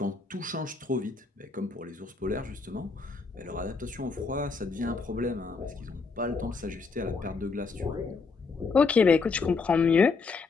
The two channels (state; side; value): quieter; right; 4.5 dB